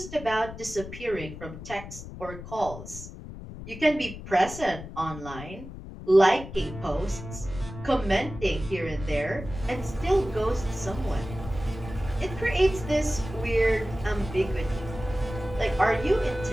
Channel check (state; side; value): noise; left; rumble, 12 dB below the sound